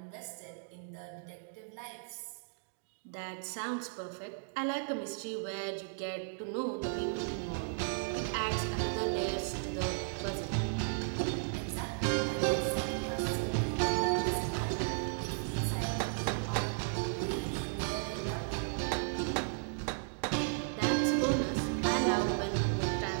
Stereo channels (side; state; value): left; silent; digital silence